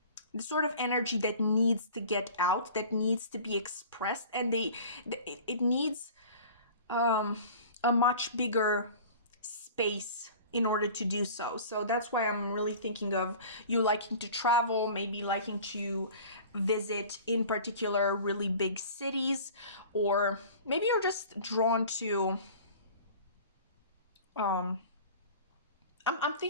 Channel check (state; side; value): inverted; both; correlation -0.42